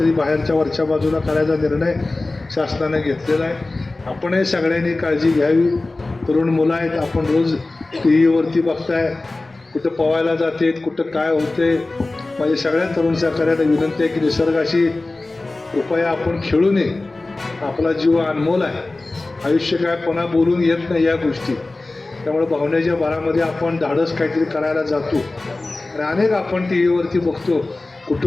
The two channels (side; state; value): right; quieter; 3.1 dB